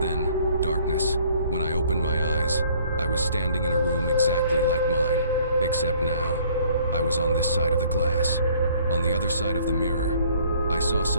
darkness. When I opened my eyes, I was standing in a room exactly like mine, except now, I was on this side of the glass. On the other side of the mirror, I saw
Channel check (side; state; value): both; inverted; correlation -0.58